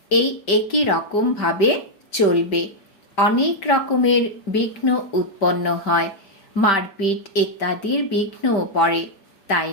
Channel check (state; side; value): late; right; 5.1 ms